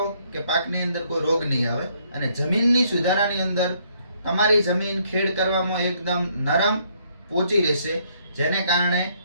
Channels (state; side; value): inverted; both; correlation -0.69